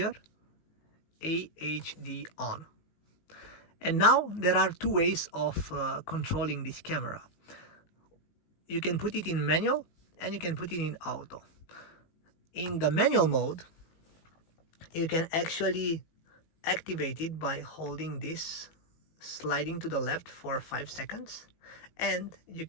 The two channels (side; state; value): right; late; 18 ms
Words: AHD on. And now there are two ways of controlling this camera. You can put it in manual, and you can put it in auto. In the manual mode, you can actually activate it by holding this, sliding to the left for 5 seconds, and you